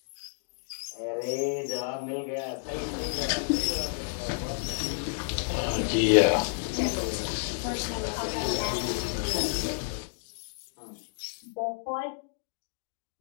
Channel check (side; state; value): right; silent; digital silence